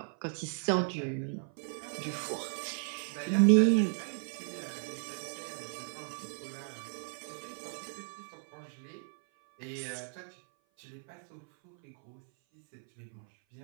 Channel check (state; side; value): silent; left; 54 dB below the other